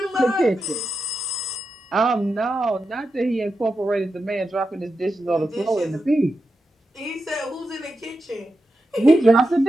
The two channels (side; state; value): both; normal; correlation 0.89